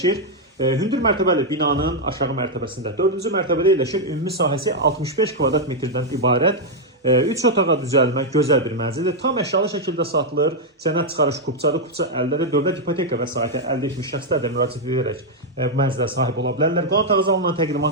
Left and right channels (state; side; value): normal; both; correlation -0.01